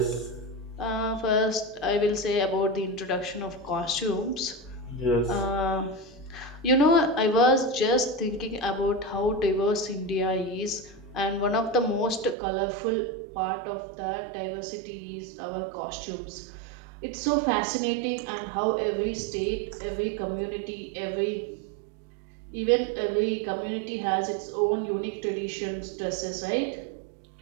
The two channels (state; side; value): drops out; left; at 12.4 s